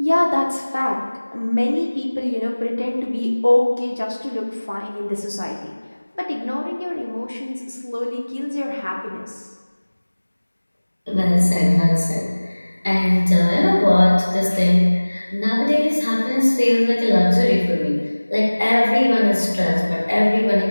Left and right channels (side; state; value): both; inverted; correlation -1.00